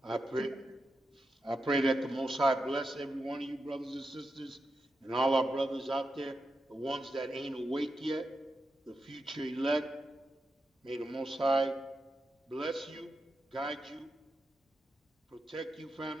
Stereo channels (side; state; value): both; normal; correlation 0.88